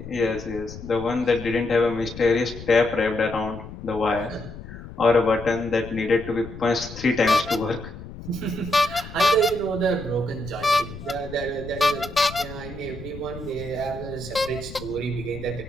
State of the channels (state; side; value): noise; left; rumble, 13 dB below the sound